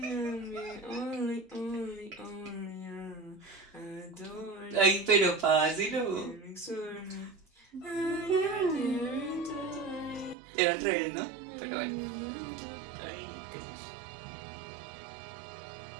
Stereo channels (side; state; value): left; drops out; at 10.4 s